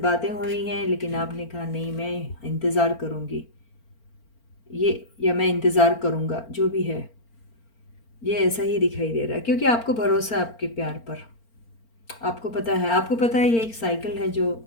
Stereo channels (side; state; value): right; late; 4.4 ms